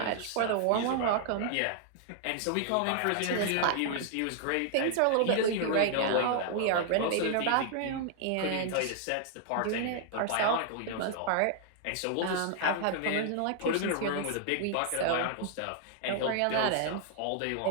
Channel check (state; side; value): different; both; correlation 0.00